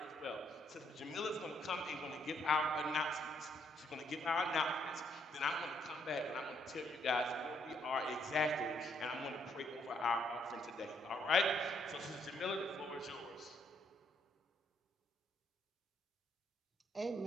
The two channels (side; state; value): both; normal; correlation 0.71